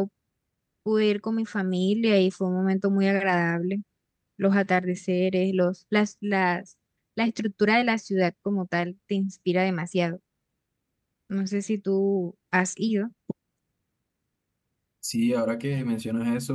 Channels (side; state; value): both; identical; correlation 1.00